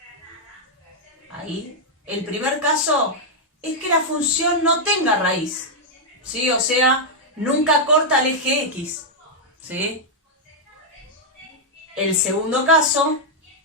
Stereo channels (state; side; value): normal; both; correlation -0.03